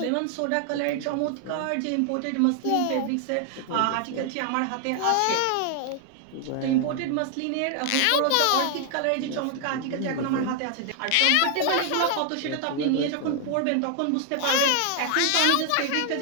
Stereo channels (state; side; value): different; both; correlation 0.00